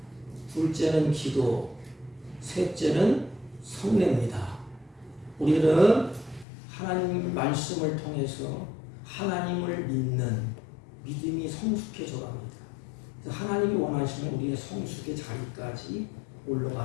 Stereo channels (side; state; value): right; drops out; at 6.5 s